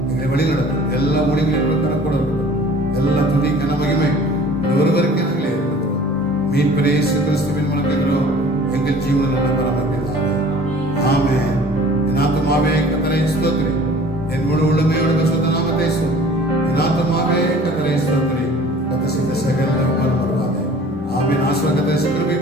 எங்களை வழி நடக்கும். எல்லா ஊழியர்களும் கணக்கூட இருக்கட்டும். எல்லா துதி கன மகிமை ஒருவருக்கே நாங்களே இருக்கிறோம். மீட்பரே இயேசு கிறிஸ்துவின் மூலம் கேட்கிறோம் எங்கள் ஜீவனில் நல்ல பராமரிப்பதாக. ஆமென். என் ஆத்துமாவே கர்த்தரை ஸ்தோத்திரி, என் முழு உள்ளமையோடு பரிசுத்த நாமத்தை சொல். என் ஆத்துமாவே கர்த்தரை ஸ்தோத்திரி, கர்த்தர் செய்த சகல உபகாரம் வருவாதே. ஆமென். ஆசீர்வாதத்தை சுக்கிரபி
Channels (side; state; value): both; normal; correlation 0.47